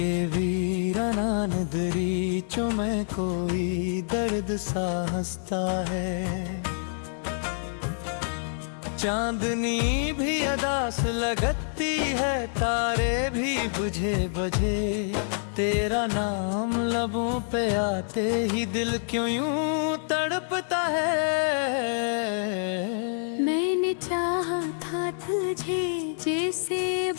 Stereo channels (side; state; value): right; silent; digital silence